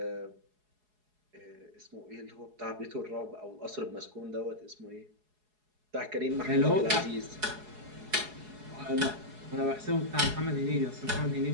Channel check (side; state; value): left; late; 4.8 ms